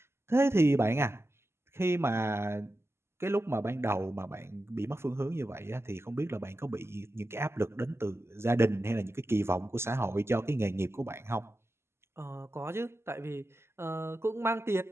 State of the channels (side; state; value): left; late; 0.12 ms